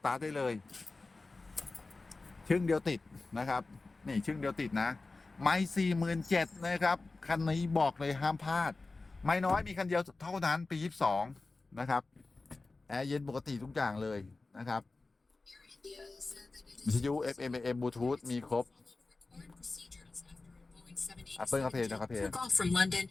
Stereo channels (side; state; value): right; quieter; 3.5 dB